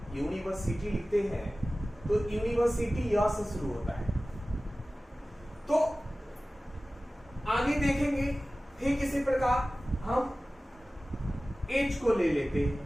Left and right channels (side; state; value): both; normal; correlation 0.97